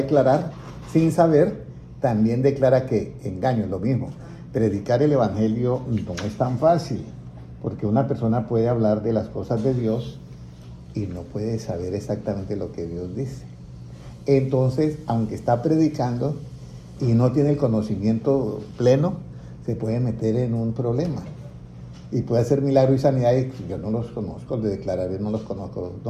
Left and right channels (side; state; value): both; identical; correlation 1.00